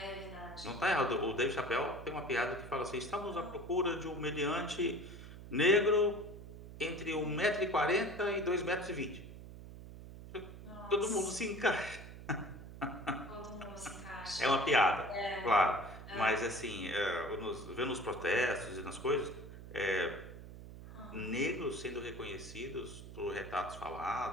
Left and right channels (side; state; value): right; noise; hum, 13 dB below the sound